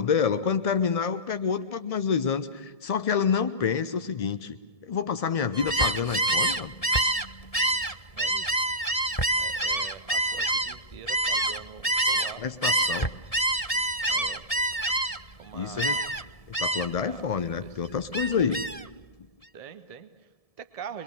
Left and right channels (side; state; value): right; late; 1.7 ms